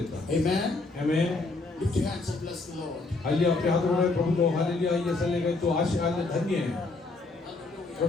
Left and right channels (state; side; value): quieter; right; 3.5 dB